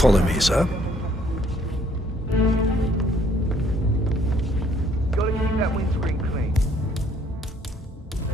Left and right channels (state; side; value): normal; both; correlation 0.64